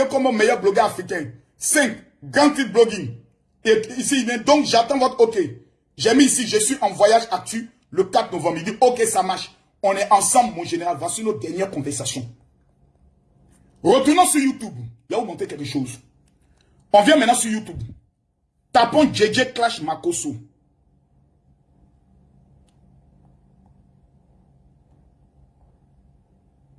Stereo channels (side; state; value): both; identical; correlation 1.00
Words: comme meilleur blogueur africain? 5. Grand titre blogging. Et ici, donc j'attends votre OK. J'ai mis ici, je suis en voyage actu le 4 novembre. Il dit OK, ça marche. On est ensemble, mon général. Voici notre dernière conversation. Retournons sur YouTube. Là, vous montrer quelque chose. On vient maintenant sur YouTube. Tapons JJ Clash Makosso.